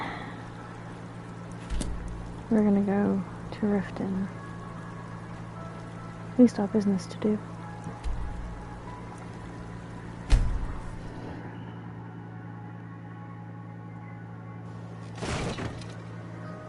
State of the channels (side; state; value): both; identical; correlation 1.00